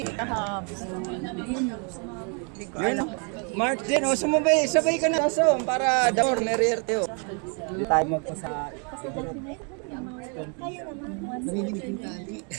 Kahapon. Hindi ko alam. Mark din, oh, sabay ka na sa para Dor, Merierte. Tayo magpo sa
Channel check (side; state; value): left; quieter; 38.2 dB